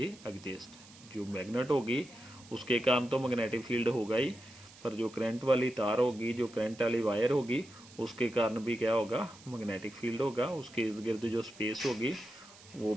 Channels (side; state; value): right; noise; hiss, 21 dB below the sound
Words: exist. जो मैग्नेट होगी उसके कारण तो मैग्नेटिक फील्ड होगा ही, पर जो करंट वाली तार होगी, जो करंट वाली वायर होगी, उसके कारण भी क्या होगा, मैग्नेटिक फील्ड होगा। उसके इर्द गिर्द जो स्पेस होगी वो